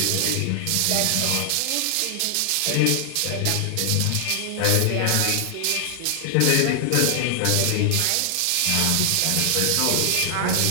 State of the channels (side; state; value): both; different; correlation 0.00